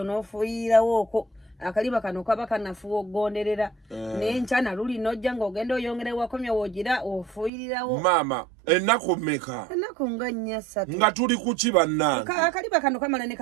n'ofuuyirawooko akaliba kano kaba kanafuwa okugonderera naye nkyana luli nojja ng'ogenda oyongera wakomya woogira ofuuyirirawo maama ennaku mmeka ennaku nga 4 nga tuli kuki bannange akaliba kano kamala ne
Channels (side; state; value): left; drops out; at 7.5 s